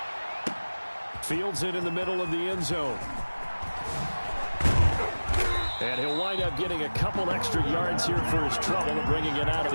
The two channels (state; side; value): inverted; both; correlation -1.00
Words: Fields it in the middle of the end zone. And he'll wind up getting a couple extra yards here for his trouble and bringing it out of